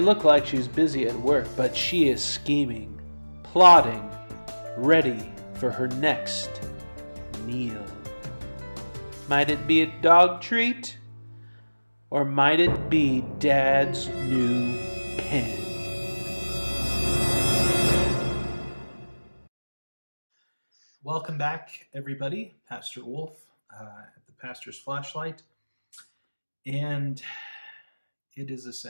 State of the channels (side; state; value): both; inverted; correlation -1.00